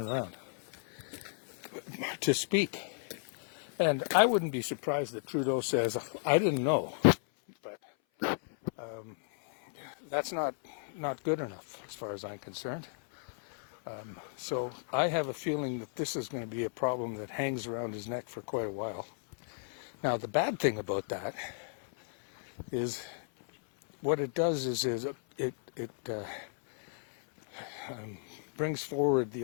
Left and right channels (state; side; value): silent; right; 55 dB below the other